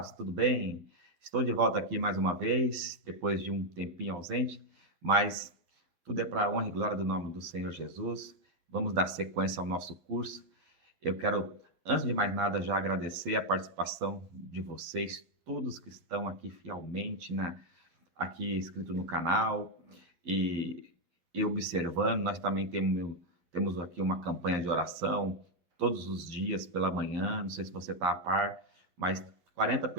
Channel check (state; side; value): late; left; 12 ms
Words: tudo bem? Estou de volta aqui mais uma vez, depois de um tempinho ausente, mas tudo é para a honra e glória do nome do Senhor Jesus. Vamos dar sequência ao nosso curso. Eu quero, antes de mais nada, já agradecer a participação de vocês, todos que estão aqui fielmente, aqui inscrito no canal e observando. Nós também temos aqui uma campanha de oração todos os dias pela manhã. Não sei se você está a par, mas 40